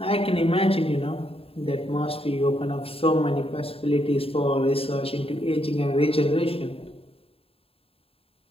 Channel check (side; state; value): right; late; 0.27 ms